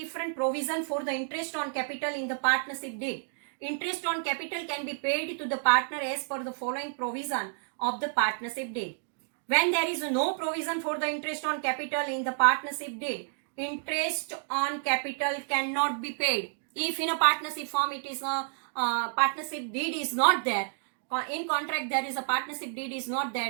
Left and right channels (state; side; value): silent; left; digital silence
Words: provision for the interest on capital in the partnership deed. Interest on capital can be paid to the partner as per the following provision of the partnership deed. When there is no provision for the interest on capital in the partnership deed, interest on capital cannot be paid. If in a partnership firm it is a partnership deed is not there, in contract there is a partnership deed is not